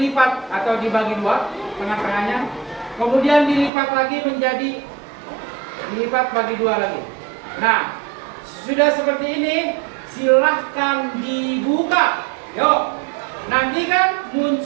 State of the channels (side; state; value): left; drops out; at 3.7 s